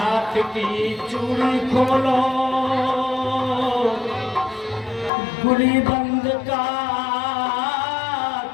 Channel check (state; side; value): drops out; right; at 5.1 s